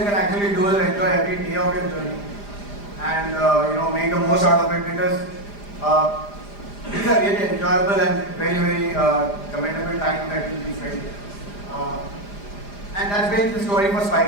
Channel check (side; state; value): right; late; 4.9 ms